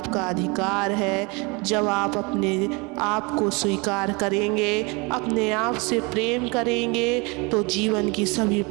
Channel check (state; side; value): quieter; left; 28.2 dB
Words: अधिकार है। जब आप अपने आप को स्वीकार करेंगे, अपने आप से प्रेम करेंगे तो जीवन की सभी